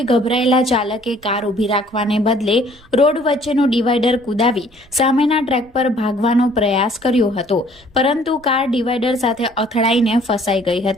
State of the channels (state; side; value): noise; right; rumble, 28 dB below the sound